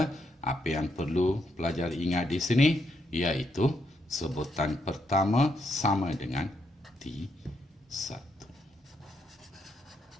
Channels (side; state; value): both; normal; correlation 0.79